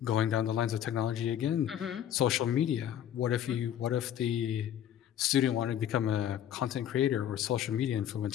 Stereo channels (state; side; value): quieter; right; 10.5 dB